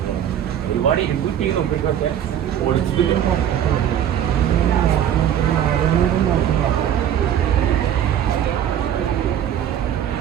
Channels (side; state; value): left; quieter; 10.1 dB